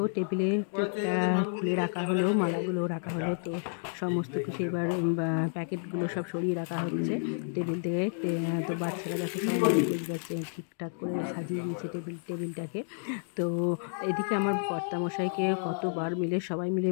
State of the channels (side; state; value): right; silent; 57 dB below the other